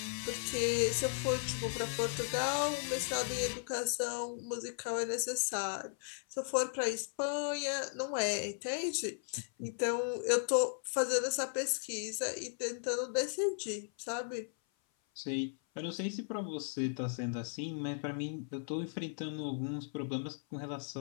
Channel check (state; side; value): silent; right; 53 dB below the other